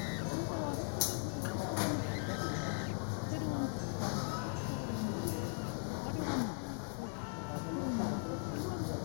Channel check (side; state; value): right; silent; 52 dB below the other